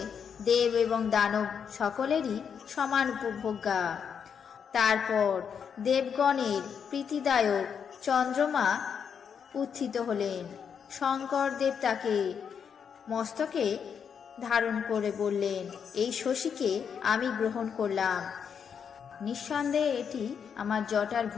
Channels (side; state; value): right; quieter; 7.2 dB